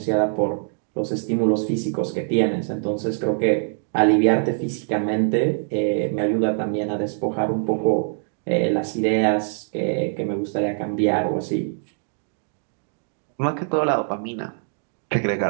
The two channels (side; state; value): left; silent; digital silence